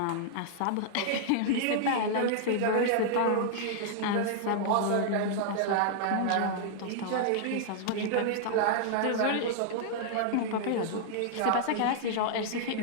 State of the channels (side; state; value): both; different; correlation -0.01